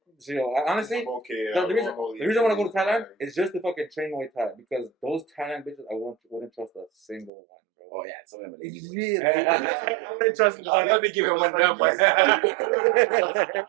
So, you know, honestly, I'm okay. the reason I want to go to Thailand is just to fucking train Muay Thai because those Thailand bitches I wouldn't trust a single one, bro. Oh yeah, some of them are lazy. boys. Really? I'm gonna trust him. Oh, let me give him one number.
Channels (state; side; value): drops out; left; at 7.3 s